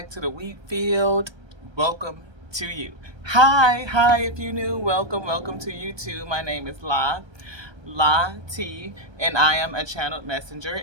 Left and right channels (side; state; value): left; late; 1.3 ms